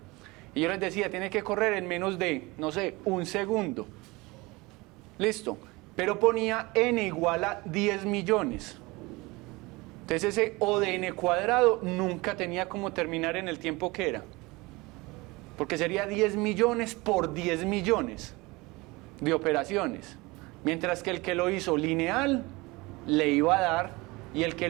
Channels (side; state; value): left; quieter; 23.4 dB